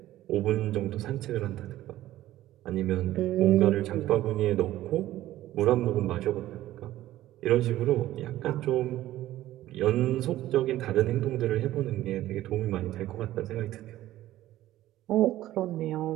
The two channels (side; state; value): left; quieter; 14.6 dB